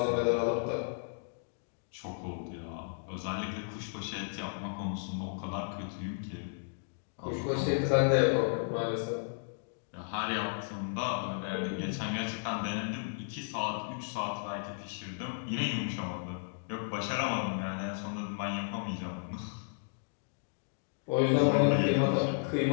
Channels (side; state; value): right; silent; digital silence